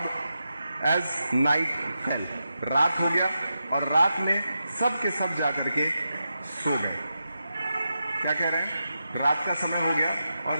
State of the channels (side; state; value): both; inverted; correlation -0.88